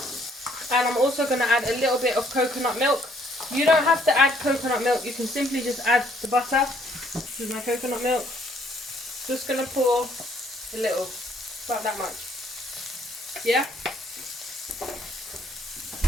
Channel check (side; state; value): both; normal; correlation 0.65